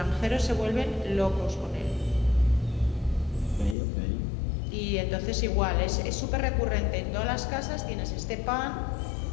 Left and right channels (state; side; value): drops out; right; at 3.8 s